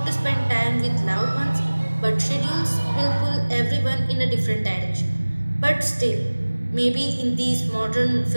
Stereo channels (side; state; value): both; inverted; correlation -1.00